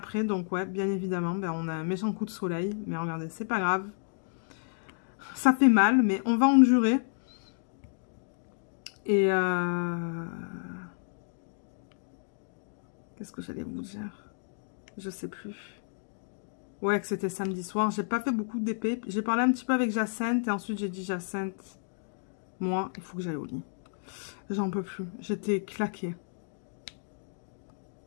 Donc ouais, bien évidemment, ben, on a un méchant coup de soleil. Mais regardez, c'est pas grave. Ça fait mal, mais on va endurer. Et qu'est-ce que j'allais vous dire? Je sais plus. Ouais, que c'était samedi soir. J'ai pas fait beaucoup d'épée. J'ai parlé un petit peu avec Jacinthe et ensuite j'ai dit Jacinthe, moi, il faut que j'aille au lit. J'en peux plus. J'étais claquée.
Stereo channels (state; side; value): silent; right; digital silence